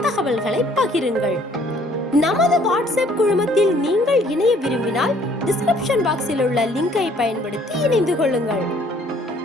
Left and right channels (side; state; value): both; normal; correlation 0.60